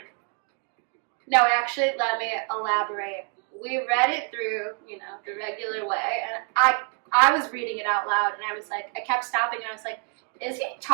No, actually, let me elaborate. We read it through, the regular way, and I was reading it out loud, and I was like, I kept stopping, and I was like, is he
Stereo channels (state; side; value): quieter; left; 38.8 dB